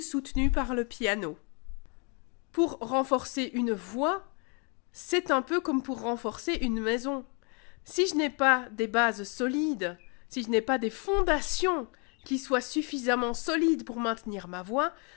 par le piano. Pour renforcer une voix, c'est un peu comme pour renforcer une maison. Si je n'ai pas des bases solides, si je n'ai pas des fondations qui soient suffisamment solides pour maintenir ma voix,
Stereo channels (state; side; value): quieter; right; 35.1 dB